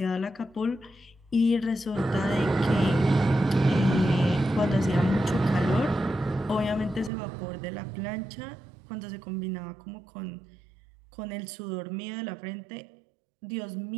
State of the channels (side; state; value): left; drops out; at 7.1 s